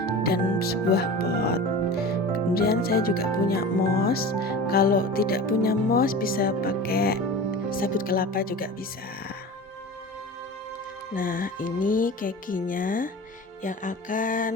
dan sebuah pot. Kemudian saya juga punya mos. Kalau tidak punya mos bisa pakai sabut kelapa juga bisa. Nah ini kekinya yang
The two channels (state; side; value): normal; both; correlation 0.34